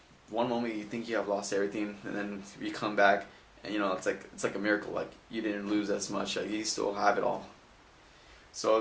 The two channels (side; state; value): both; identical; correlation 1.00